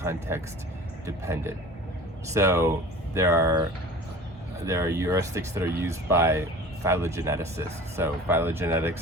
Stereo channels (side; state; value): both; normal; correlation 0.41